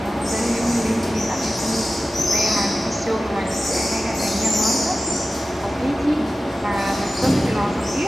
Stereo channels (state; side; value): normal; both; correlation 0.95